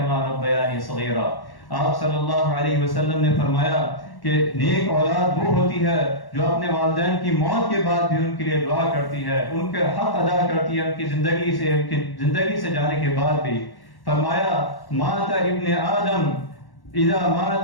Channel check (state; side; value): late; right; 1.1 ms